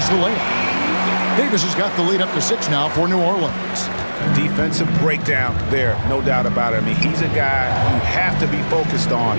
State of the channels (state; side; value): inverted; both; correlation -1.00